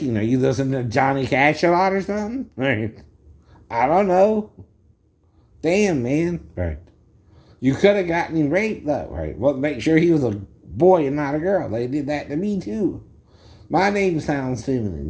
Are you listening to Johnny Cash a lot or something? Right. I don't know. Damn, man. Right. You could have gotten him raped, though, right? Well, make sure he was a boy and not a girl. They did that to me, too. My name sounds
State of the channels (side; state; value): both; identical; correlation 1.00